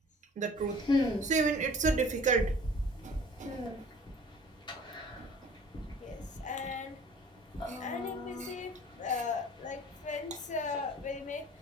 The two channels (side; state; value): both; normal; correlation 0.48